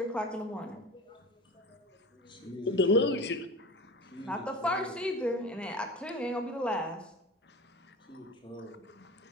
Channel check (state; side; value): normal; both; correlation 0.33